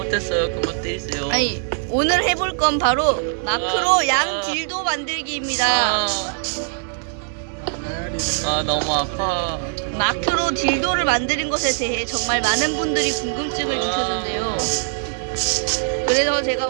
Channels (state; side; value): silent; left; digital silence